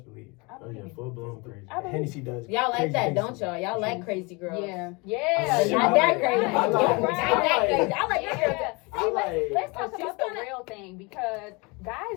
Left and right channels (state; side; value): quieter; right; 28.0 dB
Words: believe. I Oh, yeah, believe. full blown crazy. I believe. Hennessy does. Y'all like crazy that, things don't to y'all? me. Y'all like She- crazy girls. Yeah. I Yeah. like- Not that crazy. I like- Not that crazy. I like Yeah. that girl. I See, like- let's talk she's about the gonna- real thing because